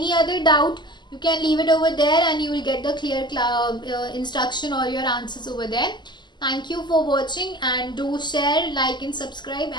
other doubt, You can leave it over there and you will get the clear instruction or your answers over there. Thank you for watching, and do share, like and subscribe,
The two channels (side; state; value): right; late; 0.21 ms